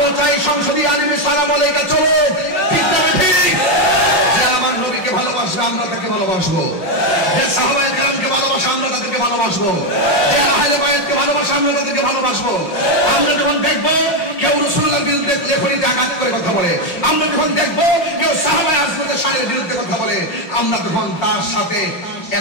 চাই সংসদীয় আইনে সালাম আলাইকা চলো ঠিক না ঠিক যে আমার নবীকে ভালোবাসবে আমরা তাকে ভালোবাসবো যে সাহাবায়ে কেরামকে ভালোবাসে আমরা তাদেরকে ভালোবাসবো যে আহলে বায়াতকে ভালোবাসে আমরা তাদেরকে ভালোবাসবো আমরা যখন দেখবো কেউ রাসূলুল্লাহর বিরুদ্ধে লেখনীতে আঘাত করে কথা বলে আমরা যখন দেখবো কেউ সাহাবায়ে আজমতের শানের বিরুদ্ধে কথা বলে আমরা তখন তার সাথে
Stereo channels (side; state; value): right; late; 5.7 ms